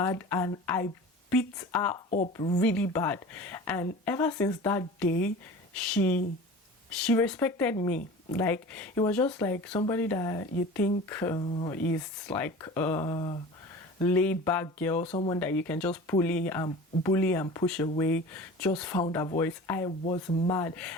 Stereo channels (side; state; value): both; normal; correlation 0.38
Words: and I beat her up really bad. And ever since that day, she respected me. Like, it was just like somebody that you think is like a laid back girl, someone that you can just bully and push away, just found her voice. I was mad.